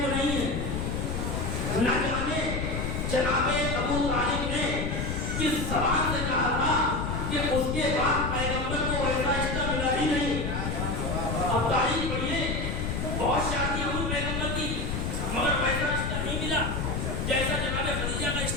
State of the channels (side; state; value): left; noise; rumble, 1 dB below the sound